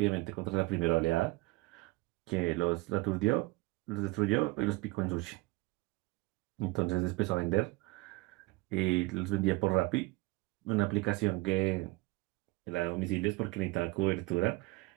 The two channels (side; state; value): left; quieter; 22.0 dB